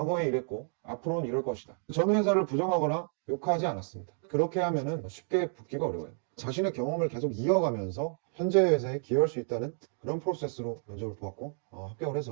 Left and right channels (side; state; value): left; silent; 57 dB below the other